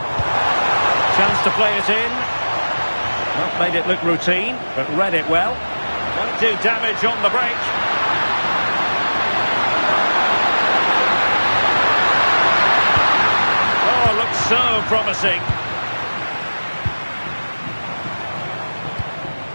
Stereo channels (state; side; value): inverted; both; correlation -1.00